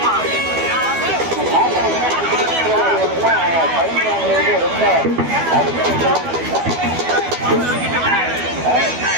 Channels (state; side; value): late; left; 12 ms